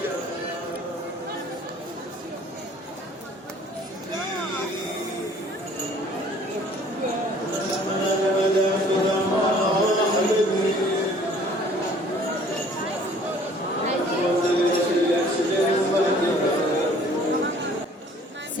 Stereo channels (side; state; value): both; normal; correlation 0.54